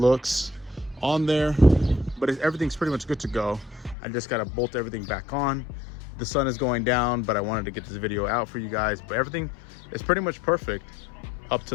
on there, but everything's pretty much good to go. I just got to bolt everything back on. The sun is going down, but I wanted to get this video out for you guys. But everything is pretty much perfect up to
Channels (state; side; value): drops out; right; at 4.0 s